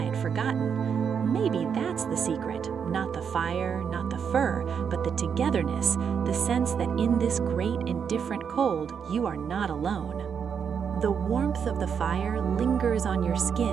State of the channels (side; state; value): left; quieter; 7.1 dB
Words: forgotten. Maybe that's the secret, not the fire, not the fur, but the togetherness, the sense that in this great and different cold, you are not alone. The warmth of the fire lingers on your